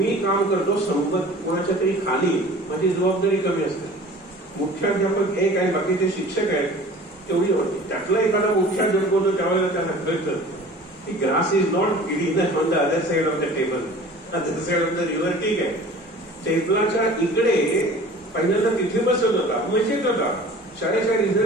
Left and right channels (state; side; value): normal; both; correlation 0.44